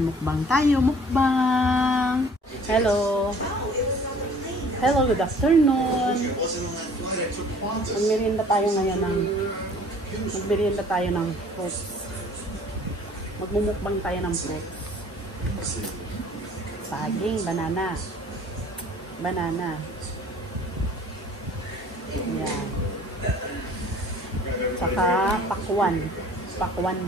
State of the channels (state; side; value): normal; both; correlation 0.52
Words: mukbang tayo, mukbang. Hello. Hello, good afternoon. Magmerienda tayo ngayon ng fruit. Magmumukbang tayo ng fruit. Saging, banana. Banana. Yan. Saka pakwan.